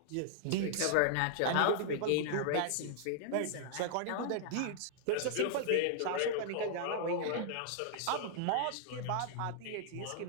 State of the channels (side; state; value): both; different; correlation -0.01